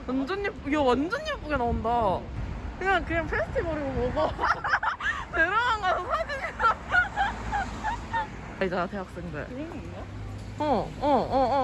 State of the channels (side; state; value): both; identical; correlation 1.00